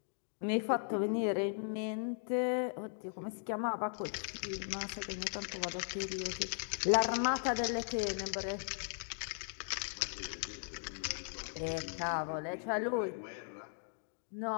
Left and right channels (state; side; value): silent; right; digital silence